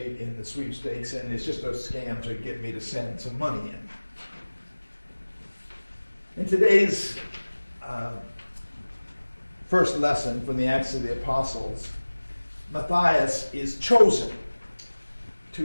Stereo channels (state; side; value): inverted; both; correlation -1.00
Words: in the sweepstakes, and it's just a scam to get me to send some money in. In today's first lesson from the Acts of the Apostles, Matthias is chosen